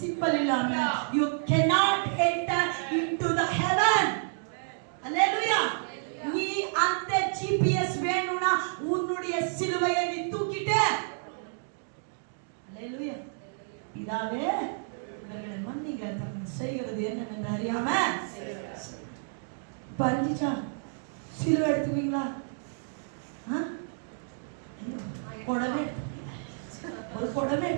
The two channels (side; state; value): left; silent; digital silence